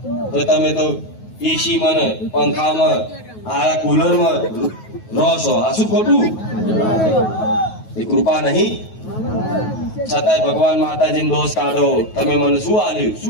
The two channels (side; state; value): right; late; 9.3 ms